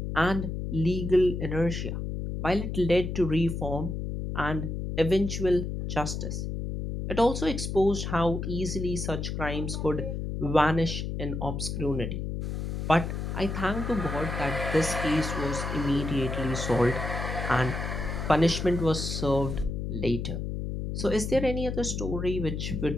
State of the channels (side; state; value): left; noise; hum, 3 dB below the sound